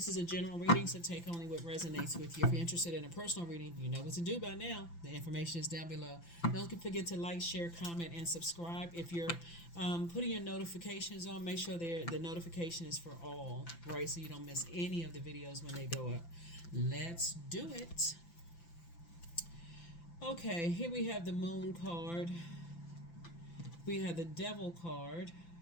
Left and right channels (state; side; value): late; right; 5.9 ms